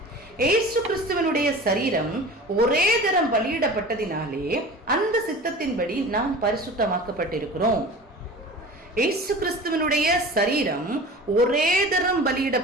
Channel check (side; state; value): both; normal; correlation 0.37